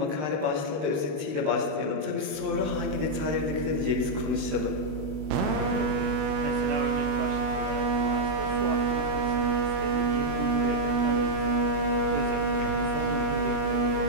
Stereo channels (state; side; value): late; left; 20 ms